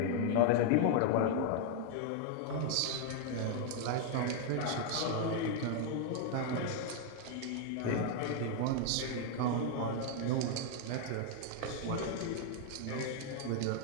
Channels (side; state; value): both; different; correlation 0.00